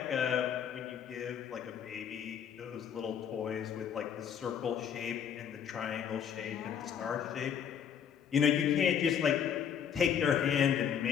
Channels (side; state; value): right; quieter; 8.2 dB